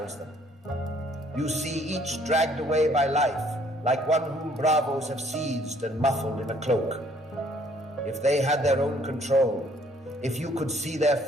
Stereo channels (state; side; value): normal; both; correlation 0.62